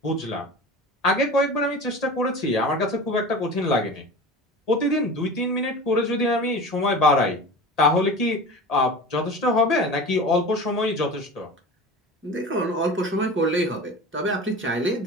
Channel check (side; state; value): both; normal; correlation 0.34